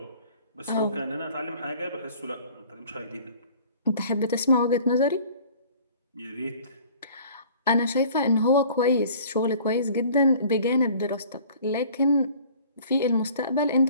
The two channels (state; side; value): inverted; both; correlation -0.50